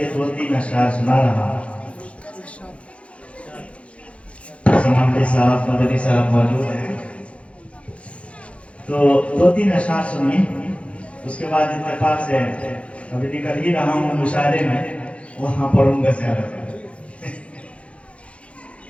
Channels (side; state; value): right; late; 0.062 ms